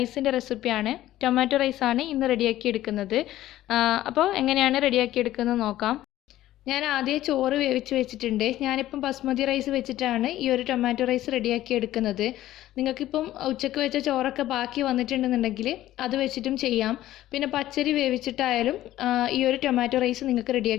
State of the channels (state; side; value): quieter; right; 14.3 dB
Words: റെസിപ്പിയാണ്. ടൊമാറ്റോ റൈസാണ് ഇന്ന് റെഡിയാക്കി എടുക്കുന്നത്. അപ്പോൾ എങ്ങനെയാണ് റെഡിയാക്കി എടുക്കുന്നത് നോക്കാം. ഞാൻ ആദ്യം ചോറ് വേവിച്ച് വെച്ചിട്ടുണ്ട്. ഞാനിപ്പം ബസ്മതി റൈസ് വെച്ചിട്ടാണ് ഈ ഒരു ടൊമാറ്റോ റൈസ് റെഡിയാക്കി എടുക്കുന്നത്. നിങ്ങൾക്കിപ്പം ഉച്ചയ്ക്ക് വെച്ച ചോറൊക്കെ ബാക്കി വന്നിട്ടുണ്ടെന്നുണ്ടെങ്കിൽ അത് വെച്ചിട്ടും ചെയ്യാം. പിന്നെ പച്ചരി വേവിച്ചിട്ടായാലും ഈ ഒരു ടൊമാറ്റോ റൈസ് നിങ്ങൾക്ക്